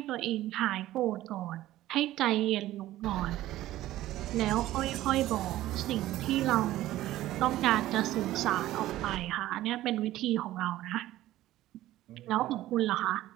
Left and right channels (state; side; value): quieter; left; 15.0 dB